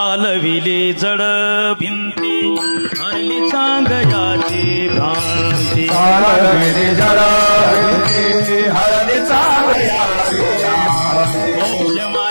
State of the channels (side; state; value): both; inverted; correlation -1.00